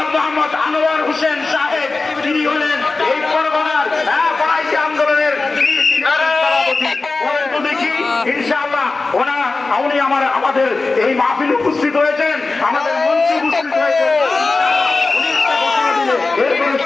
মোহাম্মদ আনোয়ার হোসেন সাহেব তিনি হলেন এই পরগনার বাড়াইশি আন্দোলনের দেখি ইনশাআল্লাহ উনি আমাদের এই মাহফিলে উপস্থিত হয়েছেন আমাদের মঞ্চে উপস্থিত হয়েছেন উনি একটা ঘোষণা দিলে এরপরে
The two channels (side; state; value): right; quieter; 3.7 dB